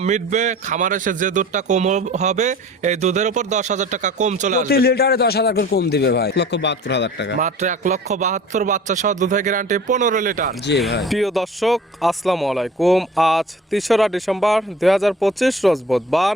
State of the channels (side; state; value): both; normal; correlation 0.43